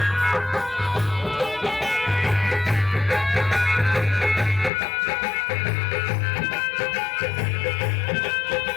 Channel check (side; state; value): right; drops out; at 4.7 s